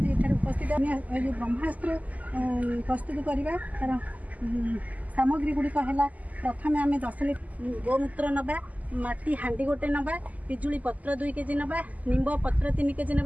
ये उपस्थित जो ब्रह्मास्त्र प्रस्तुत करवा तार सामग्री गुड़िक है। प्रथम आम 10 लिटर गोमूत्र नवा, माटी हांडी गोटे नवा, पिजुली पत्र 2 केजी नवा, निंब पत्र 3 केजी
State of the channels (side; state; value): left; late; 0.076 ms